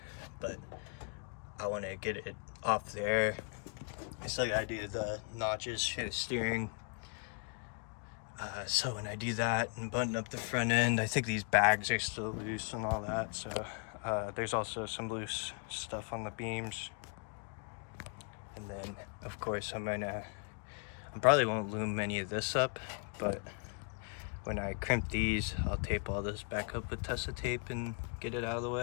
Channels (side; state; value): right; quieter; 37.8 dB